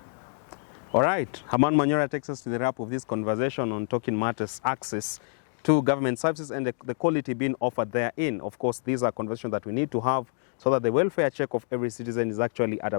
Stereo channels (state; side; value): silent; right; 60 dB below the other